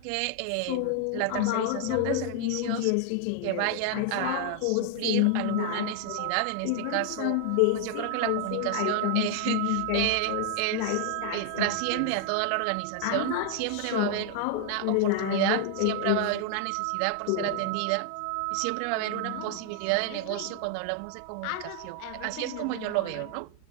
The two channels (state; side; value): different; both; correlation 0.00